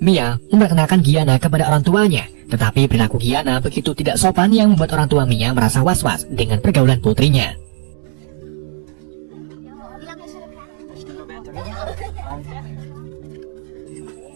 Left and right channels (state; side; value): silent; left; digital silence